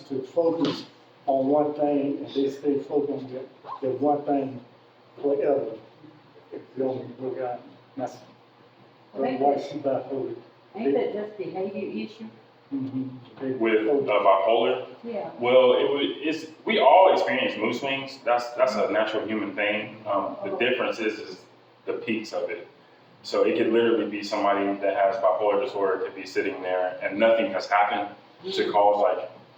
to focus on one thing and they stay focused on that one thing forever. If you only look at that's why she bipolar. Ain't that just behavior issue? With bipolar? Yeah. Well, we all experience mood swings. That's a natural human thing. The difference is the peaks of it. So it could literally be somebody that has bipolar disorder could be sitting there and nothing has happened to cause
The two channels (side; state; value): both; identical; correlation 1.00